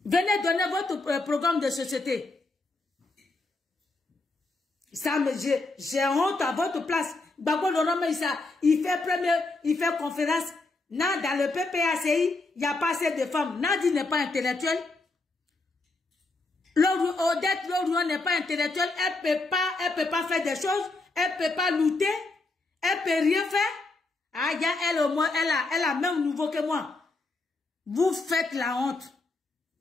Venez donner votre programme de société. Ça, j'ai honte à votre place. Gbagbo Laurent, il fait conférence. Non, dans le PPACI, il n'y a pas assez de femmes. Nadi n'est pas intellectuelle. Odette Laurent n'est pas intellectuelle. Elle peut pas faire des choses. Elle peut pas lutter. Elle peut rien faire. Ah, elle au moins, elle a même nouveau que moi. Vous faites la honte.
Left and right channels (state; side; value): quieter; right; 3.3 dB